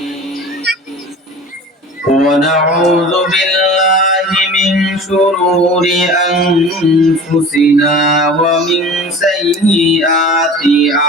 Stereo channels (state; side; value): normal; both; correlation 0.39